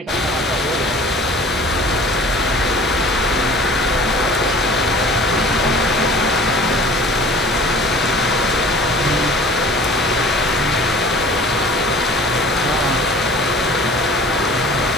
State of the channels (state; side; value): normal; both; correlation 0.46